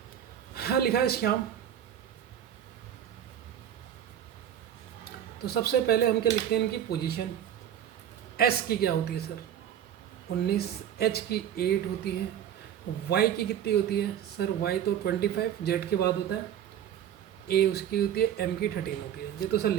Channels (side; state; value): left; quieter; 10.0 dB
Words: हाँ लिखा है श्याम। तो सबसे पहले हम क्या लिखते हैं? इनकी पोजीशन। S की क्या होती है सर? 19, H की 8 होती है, Y की कितनी होती है सर? Y तो 25 Z के बाद होता है, A उसकी होती है, M की 13 होती है। ये तो सर